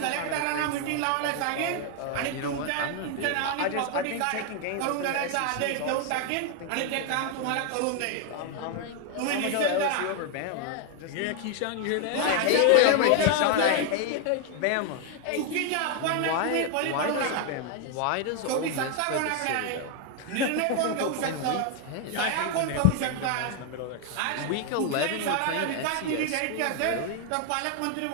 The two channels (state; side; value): different; both; correlation 0.01